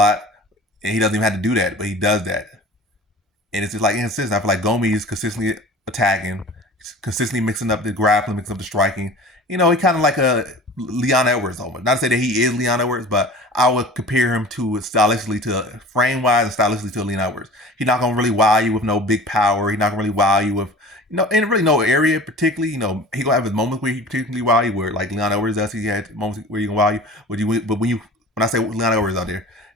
and he doesn't even have to do that, but he does that, and it's just like inconsistent. I feel like Gomis is consistently attacking, consistently mixing up the grappling, mixing up the striking. He kind of like a Leon Edwards almost. Not to say that he is Leon Edwards, but I would compare him to stylistically to frame wise and stylistically to Leon Edwards. He's not gonna really wow you with no big power. He's not gonna really wow you with in really no area particularly. He gonna have his moments where he particularly wow you, where like Leon Edwards does. He had moments where he can wow you. But when I say Leon Edwards out there,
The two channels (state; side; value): normal; both; correlation 0.40